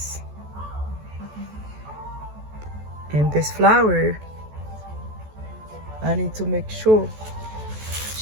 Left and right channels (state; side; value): late; left; 14 ms